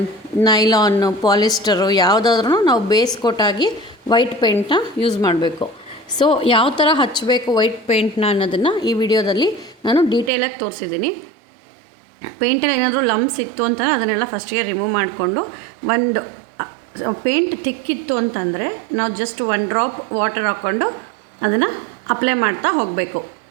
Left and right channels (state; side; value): drops out; left; at 10.3 s